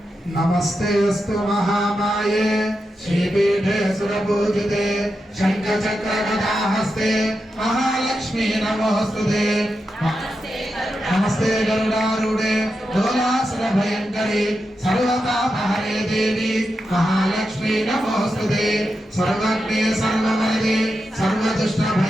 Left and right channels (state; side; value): normal; both; correlation 0.88